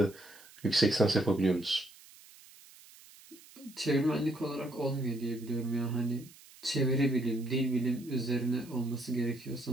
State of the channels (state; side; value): noise; right; hiss, 22 dB below the sound